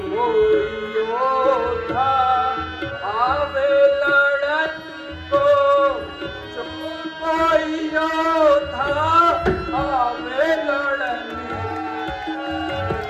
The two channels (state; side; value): identical; both; correlation 1.00